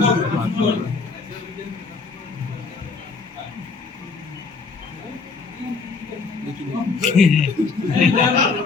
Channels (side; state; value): right; quieter; 4.5 dB